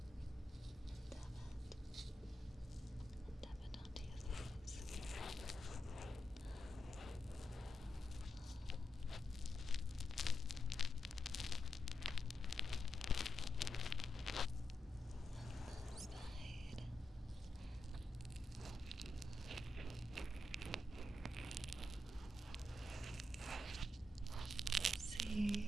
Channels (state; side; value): normal; both; correlation 0.86